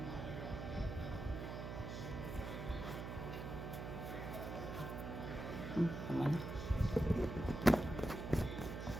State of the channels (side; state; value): right; noise; hum, 6 dB below the sound